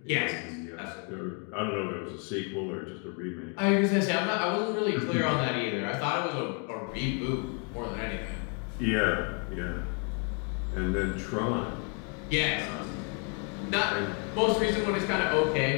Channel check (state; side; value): quieter; right; 38.6 dB